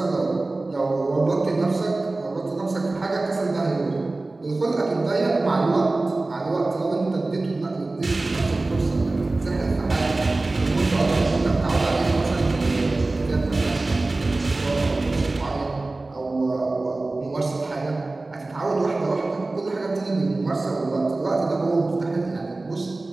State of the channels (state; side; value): quieter; left; 3.1 dB